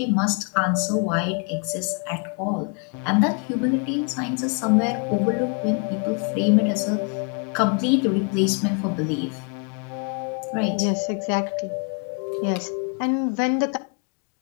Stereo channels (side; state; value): right; quieter; 37.9 dB